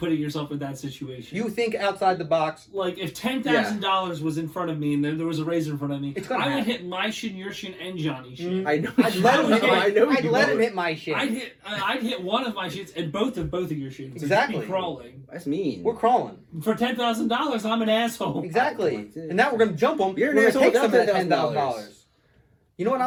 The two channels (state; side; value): identical; both; correlation 1.00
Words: yourself in that situation. You think outside the box. Like if $10,000 was in front of me and then there was a razor in front of me, It's gonna I would happen. hit my shin, your shin, and Johnny's shin. I know. I'd let him hit I know. I'd you let him would. hit my shit. I'd hit one of my shins and both of your shins. Exactly. Be crawling That's mean. We're crawling. for $10,000. I'm an asshole. Exactly. And now we're gonna jump him. You're an We're asshole gonna take some of without that $10,000. $10,000. You know what